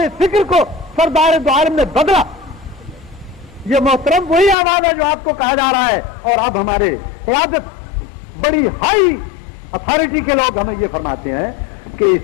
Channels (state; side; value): drops out; right; at 4.5 s